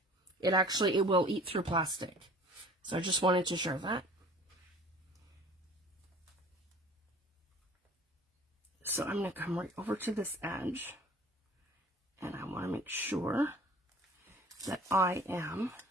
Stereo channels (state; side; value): normal; both; correlation 0.47